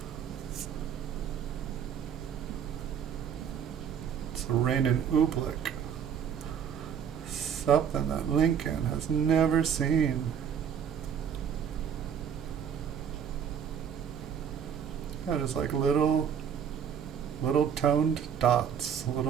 It's a Rainin oobleck. Something that Lincoln has never seen. Yeah, just like little toned dots,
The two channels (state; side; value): quieter; left; 8.1 dB